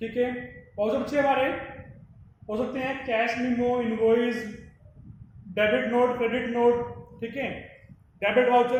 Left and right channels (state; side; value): identical; both; correlation 1.00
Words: है, वाउचर बच्चे हमारे हो सकते हैं cash memo, invoice, debit note, credit note, ठीक है, debit